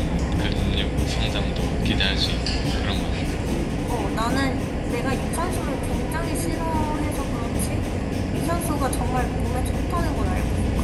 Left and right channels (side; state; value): both; identical; correlation 1.00